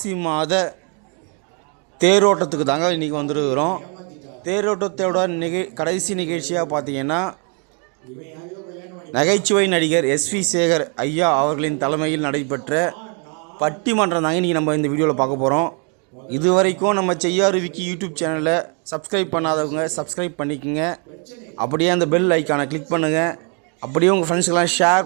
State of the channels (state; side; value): quieter; left; 37.9 dB